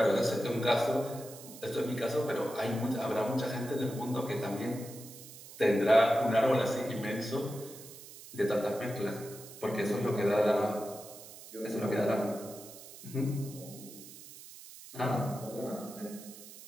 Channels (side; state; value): right; noise; hiss, 16 dB below the sound